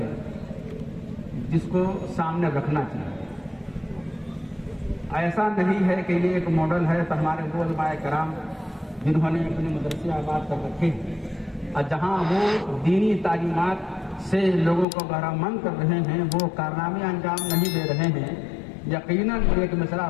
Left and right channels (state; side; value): drops out; right; at 14.9 s